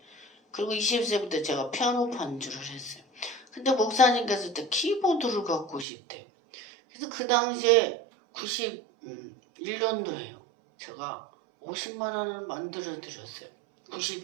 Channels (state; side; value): drops out; left; at 5.9 s